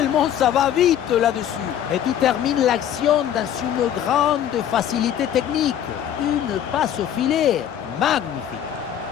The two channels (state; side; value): quieter; right; 10.2 dB